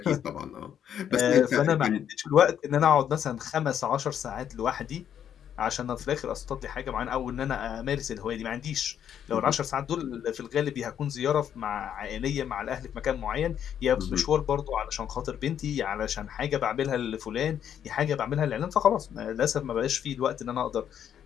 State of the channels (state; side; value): quieter; right; 9.3 dB